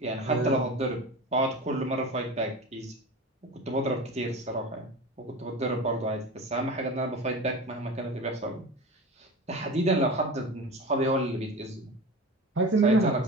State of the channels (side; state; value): both; normal; correlation 0.31